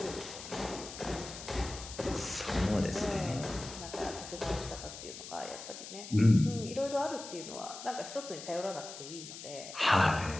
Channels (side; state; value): left; noise; hiss, 11 dB below the sound